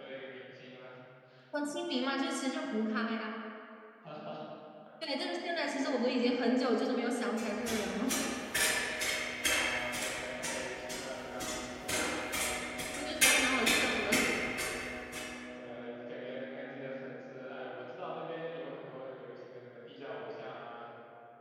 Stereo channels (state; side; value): identical; both; correlation 1.00